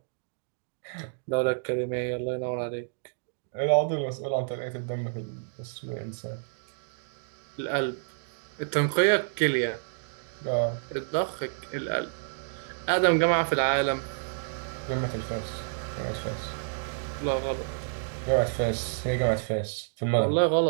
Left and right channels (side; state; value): left; silent; digital silence